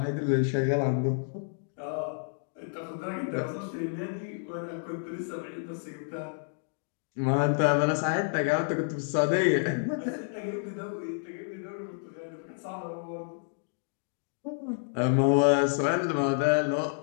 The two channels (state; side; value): silent; right; digital silence